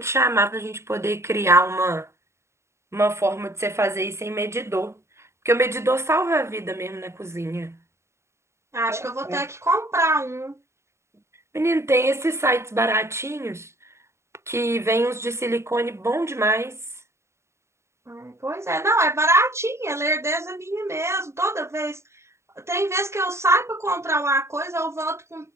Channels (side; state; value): left; late; 0.13 ms